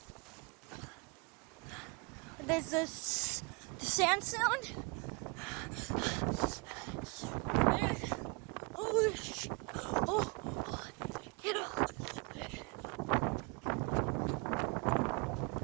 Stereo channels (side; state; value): left; quieter; 30.2 dB